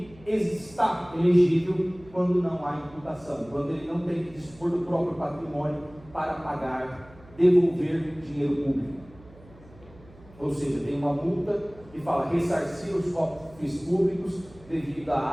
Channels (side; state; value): right; noise; hum, 23 dB below the sound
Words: está elegível quando não há imputação, quando ele não tem que dispor do próprio patrimônio para pagar, devolver dinheiro público. Ou seja, tem uma multa que fala ressarcir os cofres públicos devido